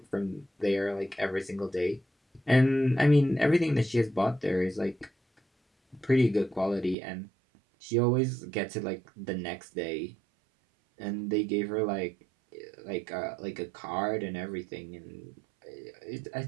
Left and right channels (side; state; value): left; drops out; at 7.0 s